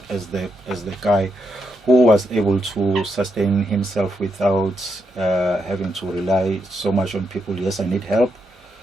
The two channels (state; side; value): normal; both; correlation 0.82